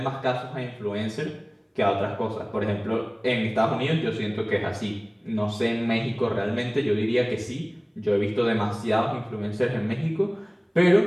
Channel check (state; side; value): identical; both; correlation 1.00